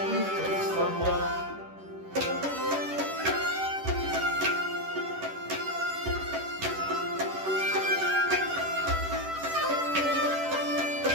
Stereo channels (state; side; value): late; left; 11 ms